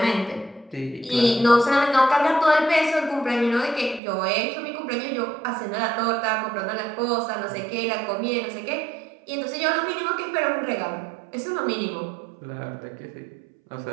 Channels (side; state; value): left; drops out; at 4.0 s